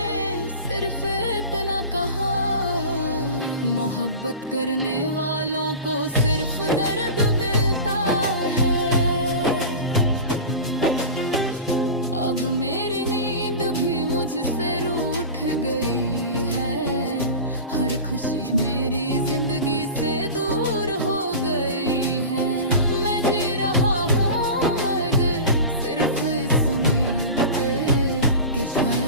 सिर्फ इतना कहा, मोहब्बत करने वालों को सिर्फ दर्द मिलता है। अब मेरी नींद भी मुझसे रूठ गई है, हर खुशी मेरी जिंदगी से दूर हो गई है। मैं जी रहा हूँ मगर सिर्फ इस उम्मीद पे कि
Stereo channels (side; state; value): both; inverted; correlation -0.30